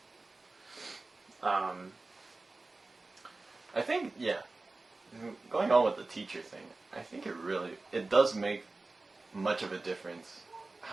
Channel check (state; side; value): quieter; left; 3.4 dB